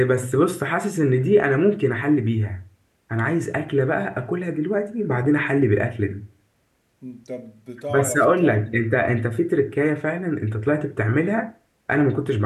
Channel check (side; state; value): both; identical; correlation 1.00